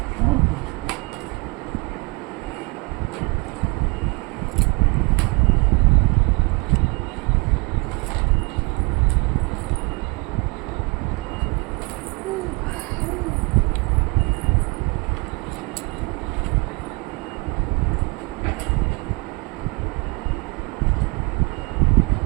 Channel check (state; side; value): quieter; left; 28.7 dB